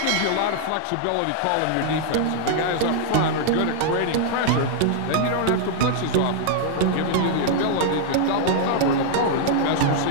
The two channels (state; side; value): different; both; correlation -0.01